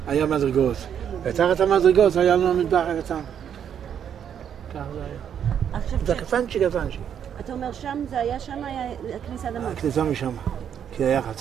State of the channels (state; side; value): quieter; left; 8.7 dB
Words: היה מדרגות. ותחת המדרגות היה לנו מטבח הקטן. ככה זה היה. זה קטנצ'י. אתה אומר שם, זה היה שם, היה הכניסה למטה. הכניסה משם. כי היה